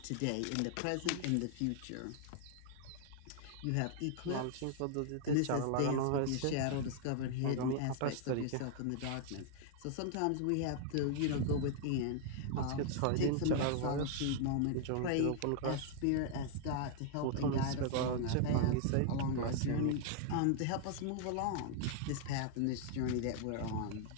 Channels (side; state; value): both; different; correlation 0.00